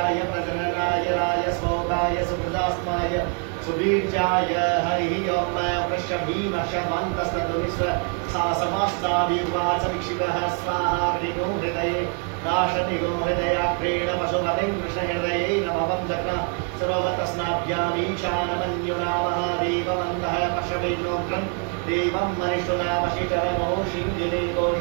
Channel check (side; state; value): left; quieter; 38.4 dB